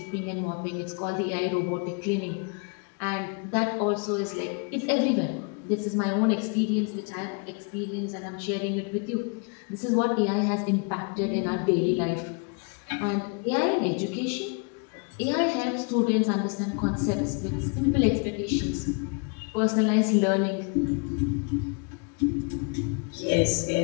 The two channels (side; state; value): right; quieter; 35.9 dB